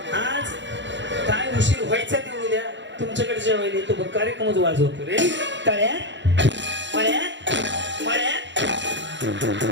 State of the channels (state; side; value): late; left; 0.53 ms